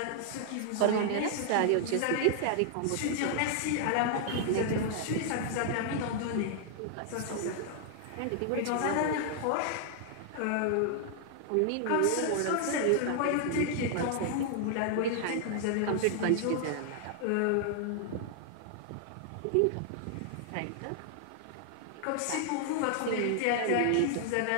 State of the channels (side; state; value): both; different; correlation 0.00